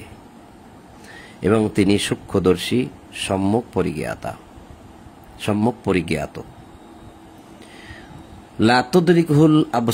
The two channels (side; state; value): both; identical; correlation 1.00